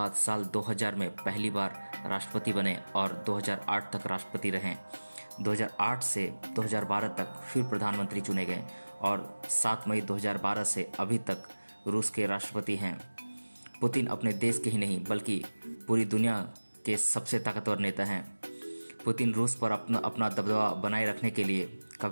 साल 2000 में पहली बार राष्ट्रपति बने और 2008 तक राष्ट्रपति रहे। 2008 से 2012 तक फिर प्रधानमंत्री चुने गए और 7 मई 2012 से अभी तक रूस के राष्ट्रपति हैं। पुतिन अपने देश के ही नहीं बल्कि पूरी दुनिया के सबसे ताकतवर नेता हैं। पुतिन रूस पर अपना दबदबा बनाए रखने के लिए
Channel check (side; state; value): both; inverted; correlation -1.00